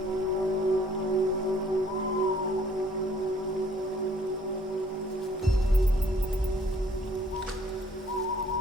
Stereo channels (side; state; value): both; normal; correlation 0.60